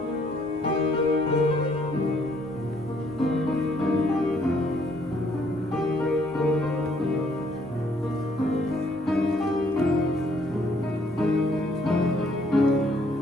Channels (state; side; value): normal; both; correlation 0.66